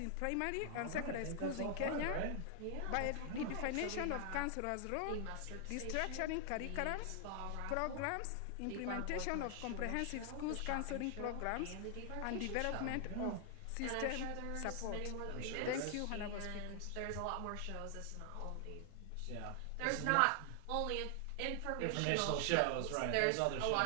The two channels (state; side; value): different; both; correlation 0.00